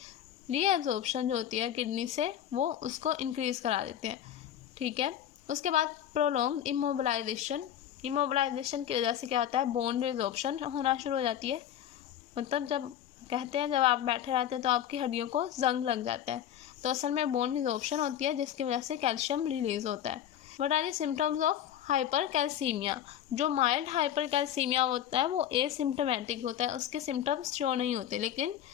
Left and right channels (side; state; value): right; quieter; 10.6 dB